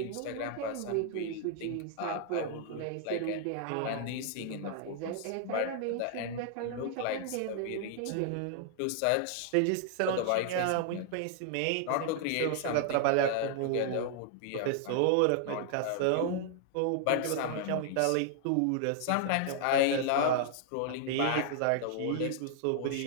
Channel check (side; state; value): both; different; correlation 0.00